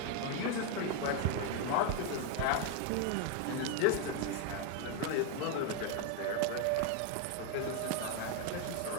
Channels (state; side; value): different; both; correlation 0.01